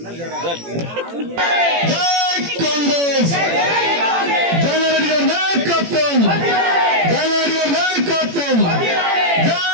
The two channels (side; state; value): left; late; 18 ms